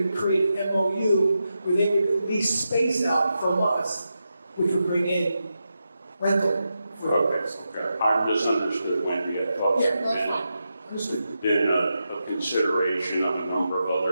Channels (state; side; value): inverted; both; correlation -0.88